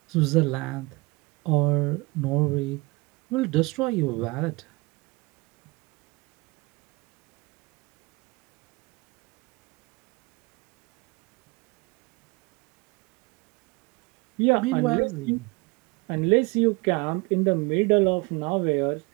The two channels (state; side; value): quieter; left; 25.0 dB